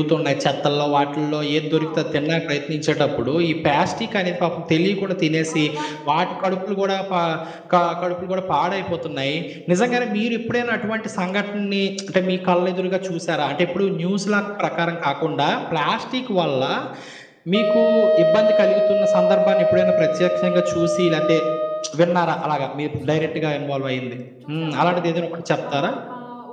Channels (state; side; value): identical; both; correlation 1.00